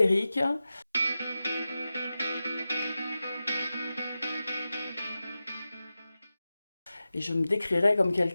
et je me décrirais comme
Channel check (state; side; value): inverted; both; correlation -0.93